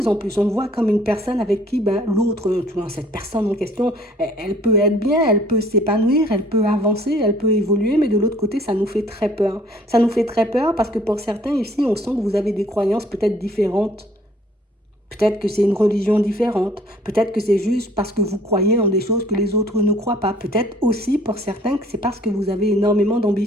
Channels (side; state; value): both; normal; correlation 0.58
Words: en plus. On te voit comme une personne avec qui ben, l'autre, tu vois, cette personne en question, elle peut être bien, elle peut s'épanouir, elle peut avancer, elle peut évoluer, mais de l'autre côté, ça nous fait très peur. Ça nous fait très peur parce que pour certains ici, on sent que vous avez des croyances peut-être différentes. Peut-être que c'est une religion différente. Peut-être que c'est juste parce que vous croyez en des choses que les autres ne croient pas. Peut-être aussi pour certains que c'est parce que vous avez énormément